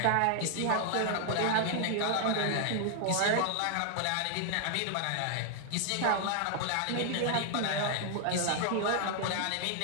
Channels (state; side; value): different; both; correlation 0.00